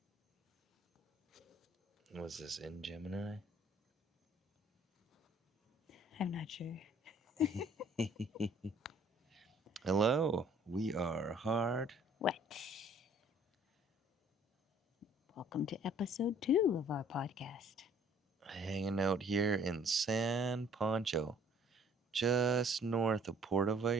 are. Was this in Gemini? I'm not sure. Hello, we are hard. What? Welcome to episode 2 of our podcast. Hanging out here in San Pancho, just north of Puerto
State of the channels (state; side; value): normal; both; correlation 0.57